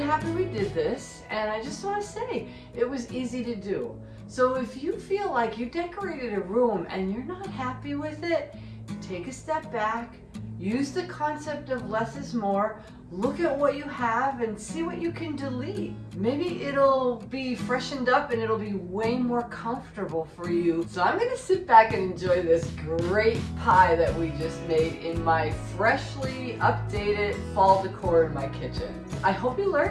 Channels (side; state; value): both; identical; correlation 1.00